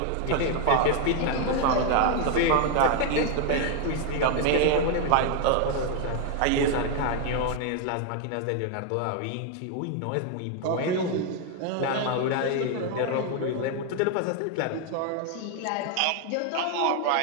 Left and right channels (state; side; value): different; both; correlation 0.00